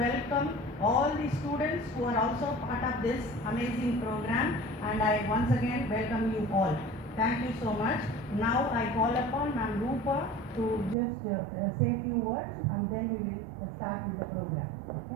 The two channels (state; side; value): drops out; left; at 11.0 s